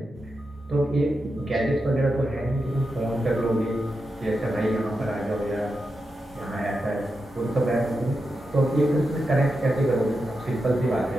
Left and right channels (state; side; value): normal; both; correlation 0.88